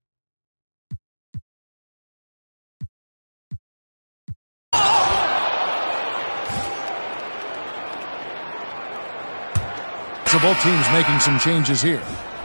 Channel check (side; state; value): both; inverted; correlation -1.00